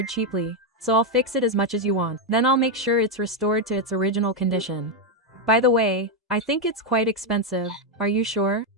cheaply, so I'll fix it as much as you want. Then I'll make sure it's restored to its original condition. By the way, I think it's quite expensive. Are you sure?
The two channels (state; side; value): normal; both; correlation 0.03